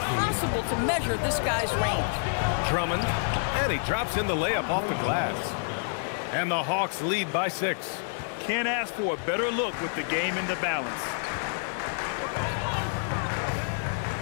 to measure this guy's range. Drummond, and he drops in the layup off the glass. And the Hawks lead by 6. Can't ask for a better look with the game in the balance.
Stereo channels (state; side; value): silent; right; digital silence